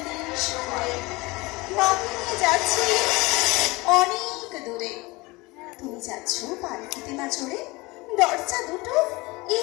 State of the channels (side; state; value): right; quieter; 23.2 dB